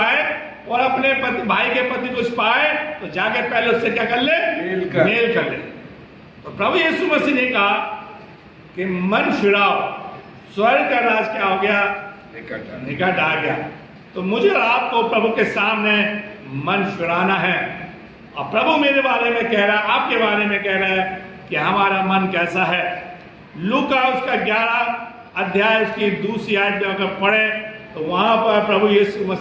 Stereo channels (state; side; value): identical; both; correlation 1.00